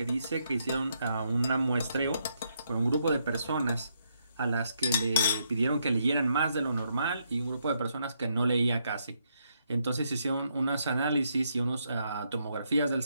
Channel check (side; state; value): both; inverted; correlation -0.77